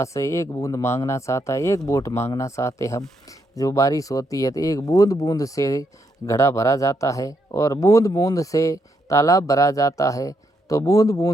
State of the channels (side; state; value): both; normal; correlation 0.78